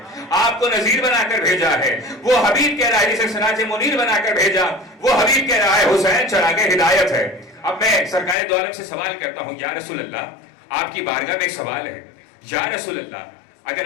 آپ کو نذیر بنا کر بھیجا ہے. وہ حبیب کہہ رہا ہے جسے سراج منیر بنا کر بھیجا, وہ حبیب کہہ رہا ہے حسین چراغ ہدایت ہے. اب میں سرکار دو عالم سے سوال کرتا ہوں, یا رسول اللہ, آپ کی بارگاہ میں ایک سوال ہے. یا رسول اللہ,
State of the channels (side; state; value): right; drops out; at 8.3 s